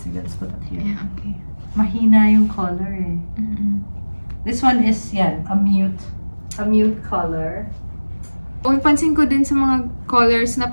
sige, let's put that here. Yeah, okay. Mahina yung color eh. Mm-mm. This one is, yan, a mute color. Oh, pansin ko din sa mga colors na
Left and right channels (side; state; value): both; inverted; correlation -1.00